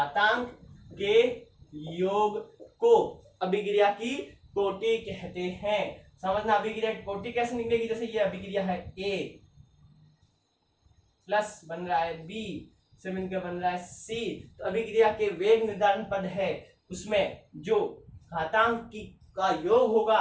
को अभिक्रिया की कोटि कहते हैं। समझना, अभिक्रिया की कोटि कैसे निकलेगी? जैसे ये अभिक्रिया है A प्लस बन रहा है B से मिलकर बन रहा है C, तो अभिक्रिया के वेग निर्धारण पद है, उसमें जो घातांक का योग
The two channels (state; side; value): identical; both; correlation 1.00